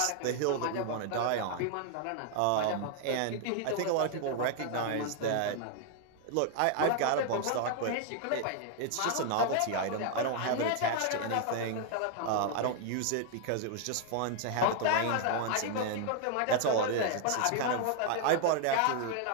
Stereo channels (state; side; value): different; both; correlation 0.00